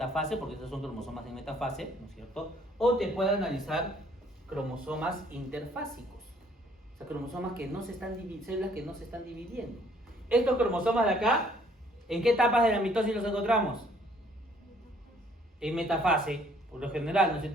porque estos son cromosomas en metafase, ¿no es cierto? O te puede analizar cromosomas interfásicos. O sea, cromosomas que no se están células que no se están dividiendo. Estos cromosomas de acá, ¿en qué etapas de la mitosis los encontramos? En metafase, por lo general, ¿no es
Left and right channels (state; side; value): normal; both; correlation 0.62